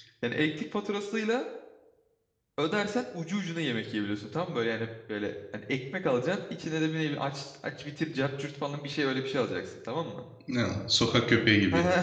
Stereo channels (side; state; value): both; identical; correlation 1.00